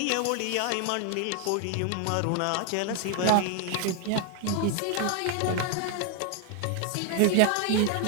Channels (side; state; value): both; different; correlation 0.00